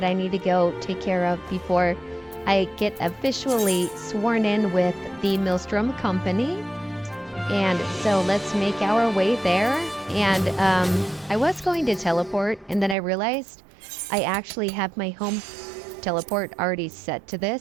I need to go take care of before I get officially sworn in with the Maelstrom Company. And so let's make our way there. And I was going to teleport, and then I realized I actually have my home teleport already set to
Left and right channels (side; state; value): left; drops out; at 13.0 s